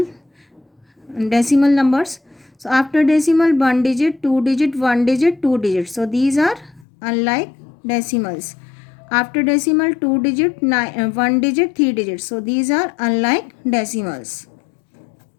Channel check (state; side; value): drops out; right; at 6.9 s